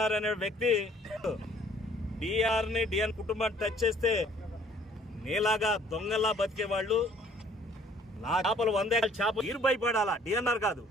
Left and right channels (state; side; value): normal; both; correlation 0.58